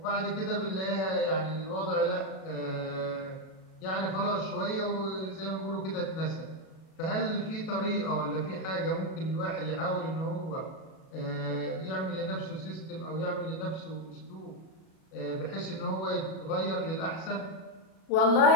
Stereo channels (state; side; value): late; right; 37 ms